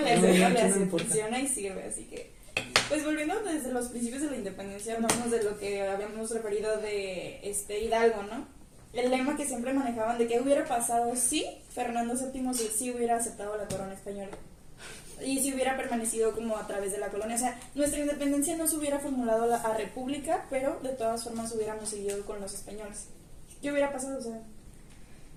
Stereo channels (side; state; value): both; identical; correlation 1.00